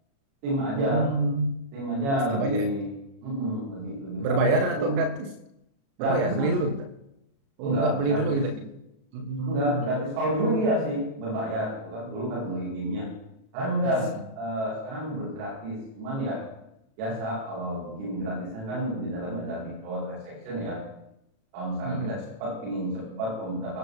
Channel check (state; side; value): late; left; 36 ms